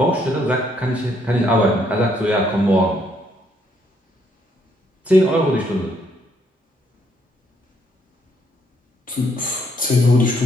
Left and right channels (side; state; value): both; normal; correlation 0.70